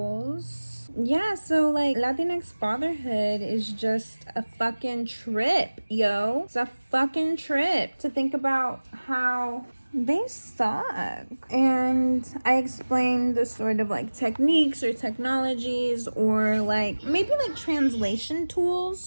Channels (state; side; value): inverted; both; correlation -1.00